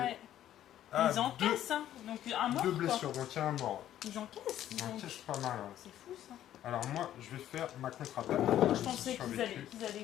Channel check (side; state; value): right; quieter; 11.9 dB